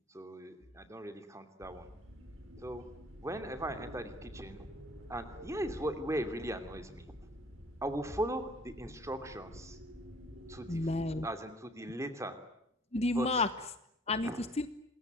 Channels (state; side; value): normal; both; correlation 0.54